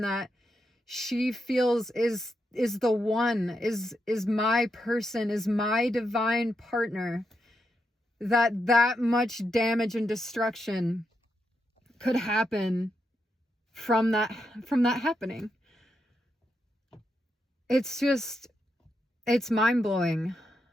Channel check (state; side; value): normal; both; correlation 0.84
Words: that she feels is the one, is my person, is my divine partner, that much damage and destruction could happen from that happening. It's mind-blowing.